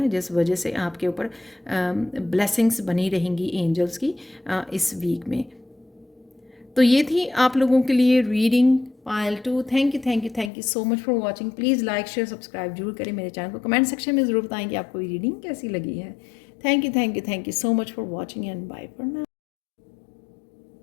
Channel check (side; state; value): right; drops out; at 10.5 s